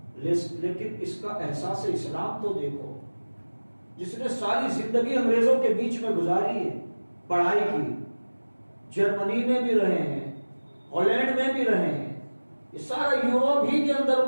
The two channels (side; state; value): both; inverted; correlation -1.00